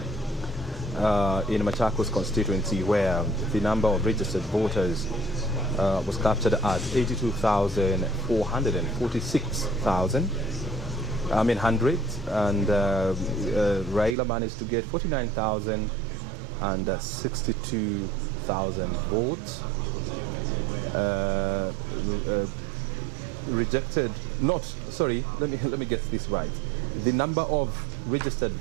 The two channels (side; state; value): left; drops out; at 14.2 s